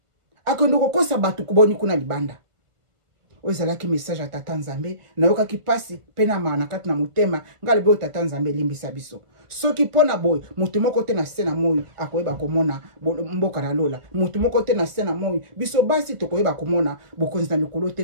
akondo kokosa batu kuboni kuna libanda oyo ezalaki message ya tata nzambe nayokaki pasi pe na maana kati na motema ngalebe oyo tata nzambe elimbisa biso soki pona boy mutu moko te na sena moyo akoyeba komona mboka na lola mutu moko te na sena moyo biso basi tokoyeba komona bokonzi na likolo te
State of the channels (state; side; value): late; left; 1.7 ms